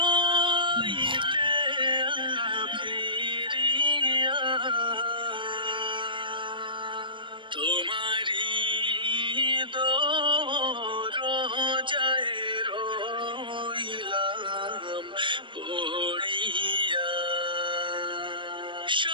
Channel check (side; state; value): left; late; 0.24 ms